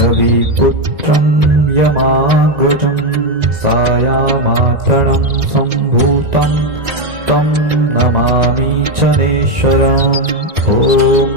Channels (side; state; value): left; late; 1.9 ms